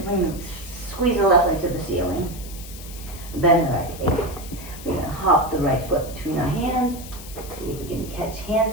to squeeze the left leg to the ceiling. Bend the right leg. We're going to hop the right foot between our hands. See if we can catch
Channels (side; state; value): left; noise; hiss, 15 dB below the sound